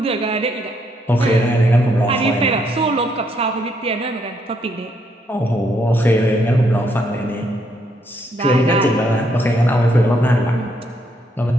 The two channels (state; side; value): normal; both; correlation 0.74